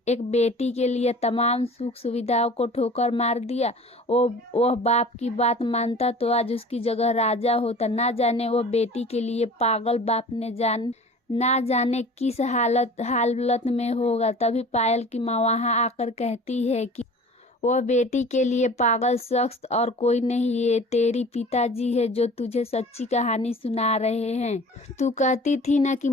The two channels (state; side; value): normal; both; correlation 0.43